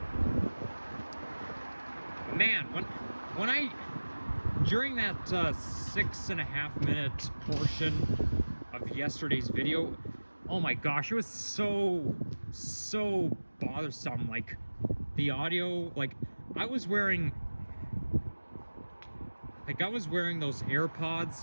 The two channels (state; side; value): inverted; both; correlation -1.00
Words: man, when I during that 6.5 minute portion of yesterday's video, oh my gosh, it was so bothersome. Like, the audio, like, I was wearing those